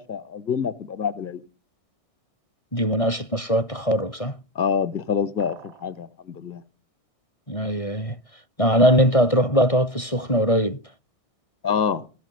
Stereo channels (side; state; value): right; late; 1.6 ms